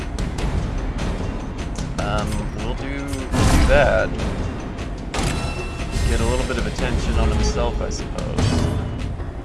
We'll do that. Get a little bit of attention on himself, I suppose.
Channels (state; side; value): identical; both; correlation 1.00